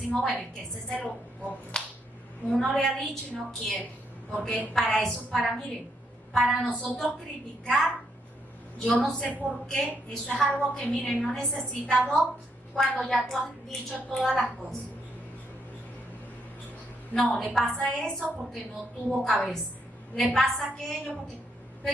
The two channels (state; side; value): normal; both; correlation 0.76